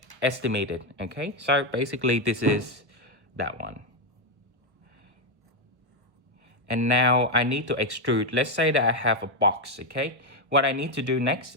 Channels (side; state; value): left; late; 1.2 ms